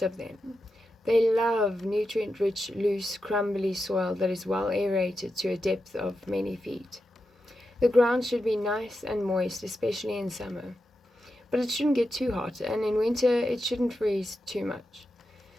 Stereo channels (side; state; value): both; normal; correlation 0.88